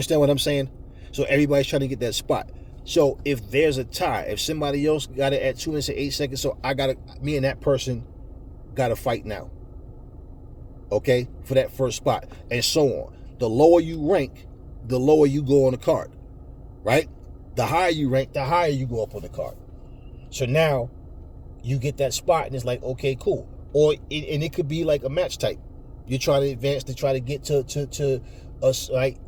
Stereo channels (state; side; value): identical; both; correlation 1.00